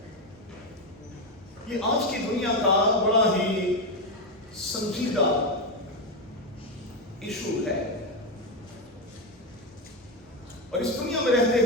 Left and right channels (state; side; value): normal; both; correlation 0.09